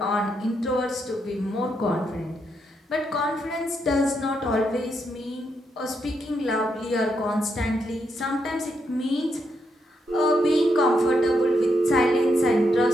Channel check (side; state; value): both; normal; correlation 0.80